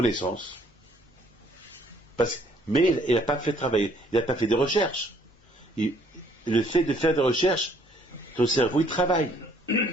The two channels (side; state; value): both; normal; correlation 0.63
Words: Mais il n'a pas fait travailler, il n'a pas fait de recherches. Le fait de faire des recherches, ton cerveau il travaille.